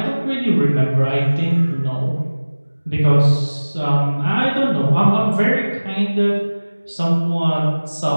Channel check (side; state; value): both; inverted; correlation -1.00